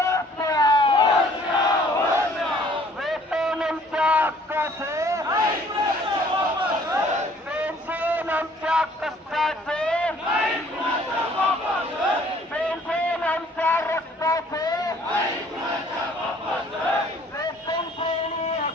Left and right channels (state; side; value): normal; both; correlation 0.57